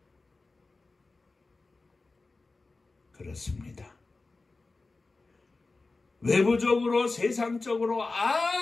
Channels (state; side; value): quieter; right; 3.6 dB